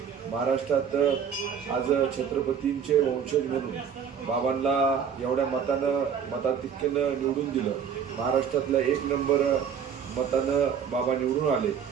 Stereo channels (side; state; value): left; quieter; 7.5 dB